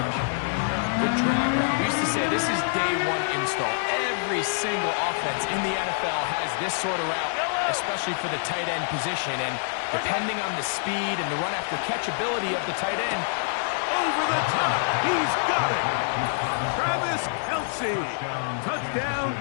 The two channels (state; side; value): silent; right; digital silence